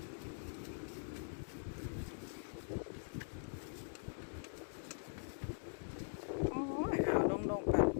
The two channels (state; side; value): silent; right; digital silence